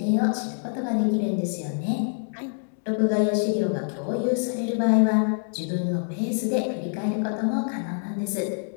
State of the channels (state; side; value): silent; right; 61 dB below the other